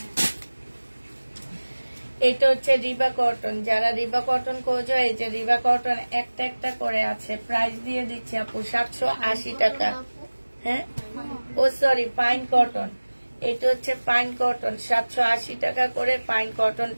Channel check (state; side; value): inverted; both; correlation -1.00